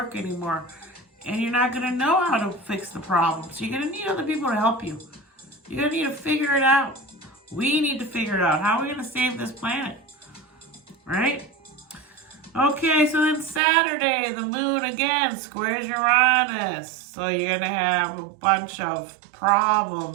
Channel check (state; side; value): drops out; left; at 13.6 s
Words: anymore. And you're not going to know how to fix the problem. So you're going to need other people to help you. You're going to need to figure it out. We need to figure it out. How are we going to save this planet? Right? Okay, so then Saturday, the moon again squares Uranus. So you're going to have a bunch of